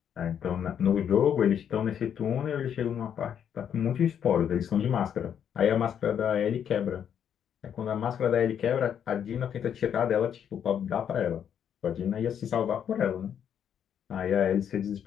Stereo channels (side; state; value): right; quieter; 8.7 dB